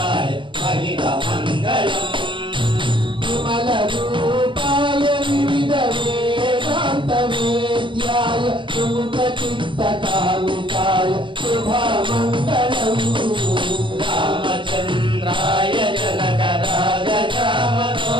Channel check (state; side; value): late; left; 0.24 ms